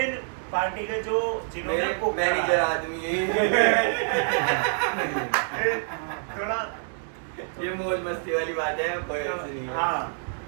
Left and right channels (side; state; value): left; silent; digital silence